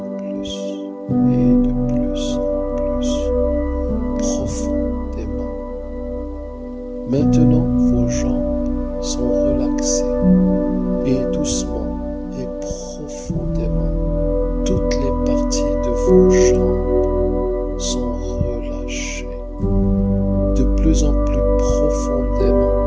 plus, et de plus en plus, profondément. Maintenant, vos jambes sont relaxées et doucement et profondément, toutes les parties de vos jambes sont relâchées de plus en plus profondément,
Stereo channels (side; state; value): both; identical; correlation 1.00